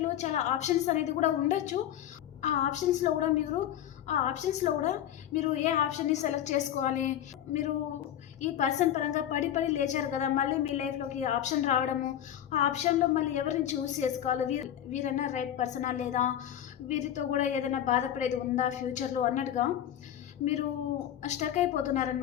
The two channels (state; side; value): quieter; right; 11.0 dB